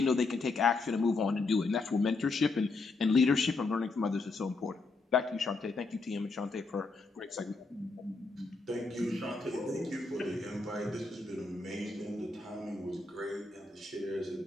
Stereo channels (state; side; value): quieter; right; 3.7 dB